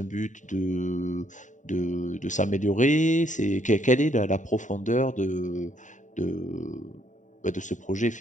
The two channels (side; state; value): right; late; 0.36 ms